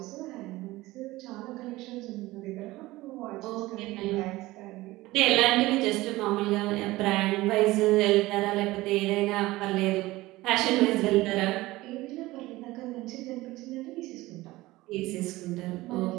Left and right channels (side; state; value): left; quieter; 18.8 dB